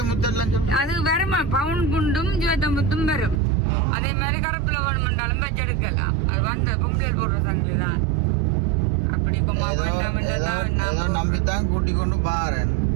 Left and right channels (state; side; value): drops out; left; at 3.4 s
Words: அது வருமா பவுன் குண்டும் சிவத்த முத்தும் வரும். அதே மாதிரி கருப்புல வேணுமென்றாலும் வச்சு எடுக்கலாம். அது வந்து பொம்பளை போடுற சங்கிலி தான். அப்படி நம்பித்தான் கூட்டி கொண்டு பாரு